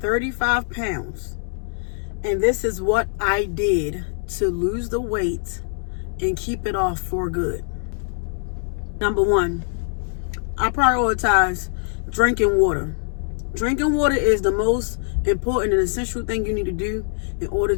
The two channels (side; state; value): right; silent; 63 dB below the other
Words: pounds, and this is what I did to lose the weight and keep it off for good. Number one, I prioritize drinking water. Drinking water is the most important and essential thing you need to do in order